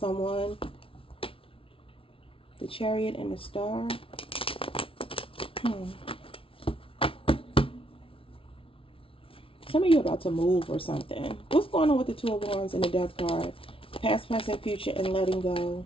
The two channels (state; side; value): late; right; 0.26 ms